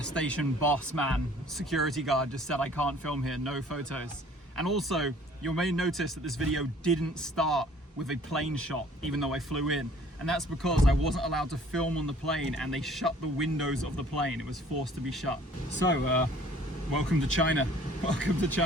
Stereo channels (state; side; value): normal; both; correlation 0.54